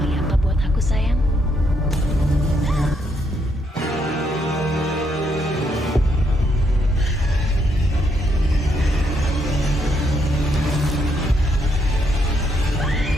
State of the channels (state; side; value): normal; both; correlation 0.75